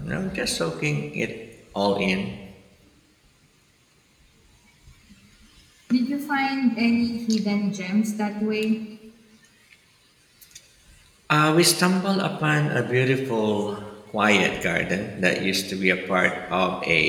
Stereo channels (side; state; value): both; identical; correlation 1.00